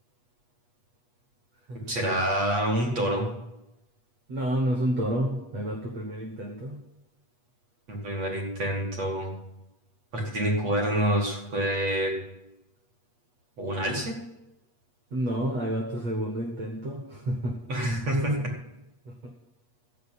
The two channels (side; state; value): left; late; 8.3 ms